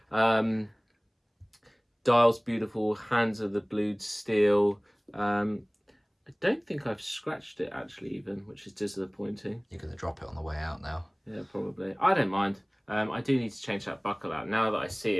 Dial's beautiful. Hands are the blued steel. I don't think I've scratched it actually even, which is disappointing. You're going to drop it on the way out now. Yeah, probably. I don't mind. I do need to change that buckle out. Now that I see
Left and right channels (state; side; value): identical; both; correlation 1.00